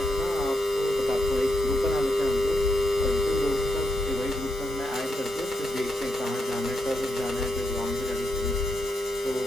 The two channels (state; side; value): normal; both; correlation 0.82